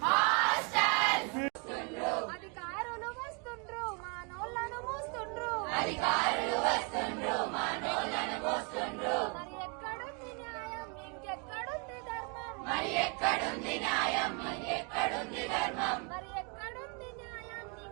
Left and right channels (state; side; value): quieter; left; 34.8 dB